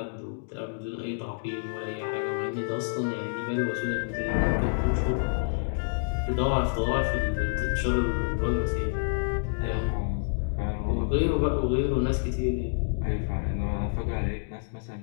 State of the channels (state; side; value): silent; right; digital silence